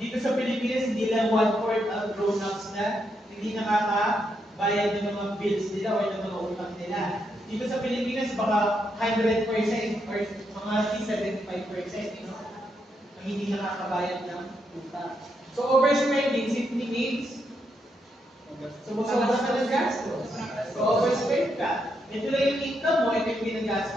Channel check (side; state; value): both; normal; correlation 0.80